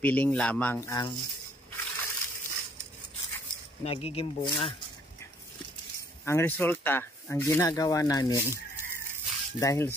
lamang ang nagiging bunga. Ang resulta, ang ginagawa namin, dahil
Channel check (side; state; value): both; normal; correlation 0.63